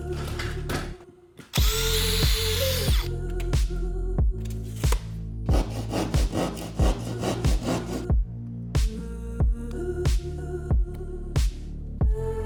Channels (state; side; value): identical; both; correlation 1.00